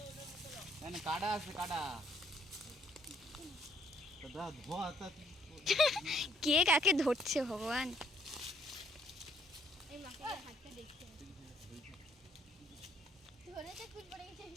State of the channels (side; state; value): both; normal; correlation 0.66